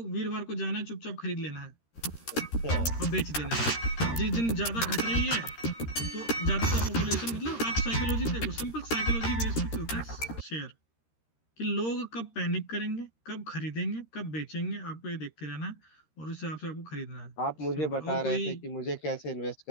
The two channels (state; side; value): late; right; 13 ms